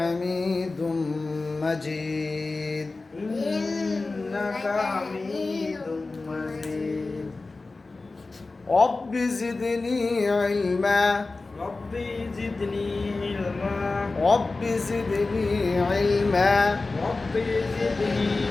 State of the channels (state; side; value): quieter; right; 3.6 dB